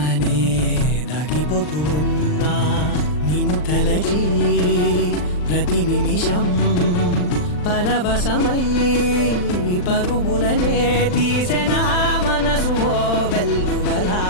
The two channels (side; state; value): right; late; 39 ms